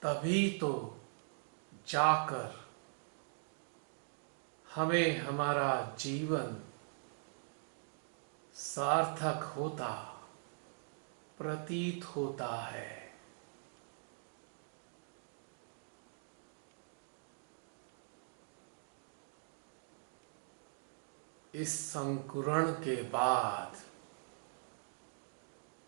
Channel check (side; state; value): left; silent; digital silence